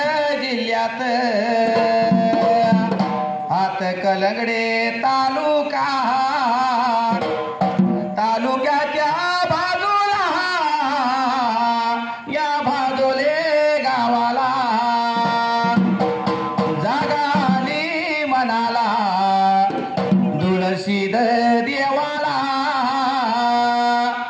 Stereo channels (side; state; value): both; identical; correlation 1.00